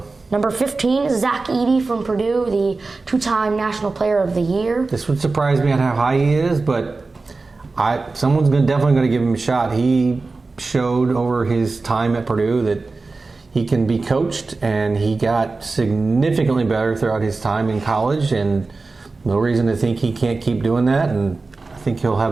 Number 15, Zach Edey from Purdue, the 2-time National Player of the Year. This would surprise me on how high he is, but someone's definitely going to give him a shot. He showed over his time at Purdue that he can be coached, and he got significantly better throughout his time in college, and No reason to think he can't keep doing that, and I think he'll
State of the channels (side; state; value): left; quieter; 3.8 dB